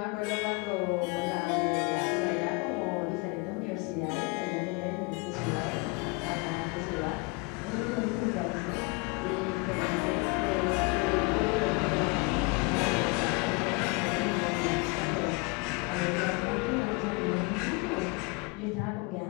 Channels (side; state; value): right; quieter; 28.8 dB